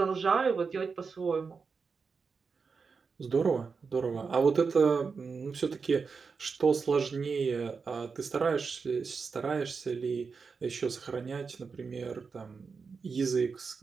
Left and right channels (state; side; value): quieter; left; 5.1 dB